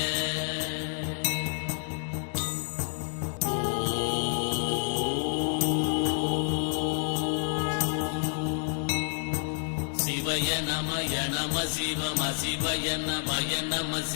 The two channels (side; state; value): right; silent; 59 dB below the other